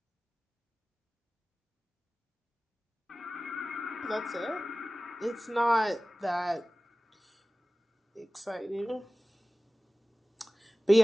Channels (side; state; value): both; normal; correlation 0.97